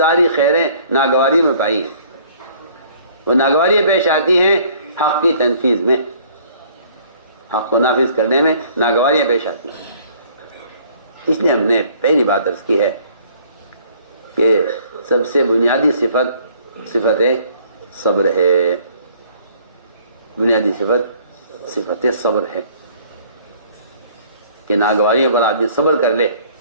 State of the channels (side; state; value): both; inverted; correlation -0.57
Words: خیریں ناگواری میں پائی ہیں. وہ ناگواریاں پیش آتی ہیں حق کی تنفیذ میں، حق کو نافذ کرنے میں ناگواریاں پیش آتی ہیں. اس لیے ہم نے پہلی بات عرض کی ہے کہ سب سے بنیادی صفت صبر ہے، بنیادی صفت صبر ہے کہ ناگواریوں پر آدمی صبر کر لے.